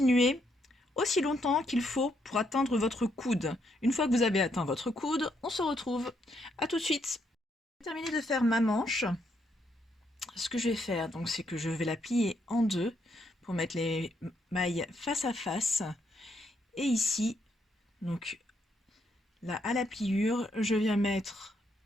aussi longtemps qu'il faut pour atteindre votre coude. Une fois que vous avez atteint votre coude, on se retrouve. À tout de suite. J'ai terminé de faire ma manche. Ce que je vais faire, donc, c'est que je vais la plier en deux pour mettre les mailles face à face. Et ici, donc là à la pliure, je viens mettre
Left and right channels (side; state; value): both; normal; correlation 0.75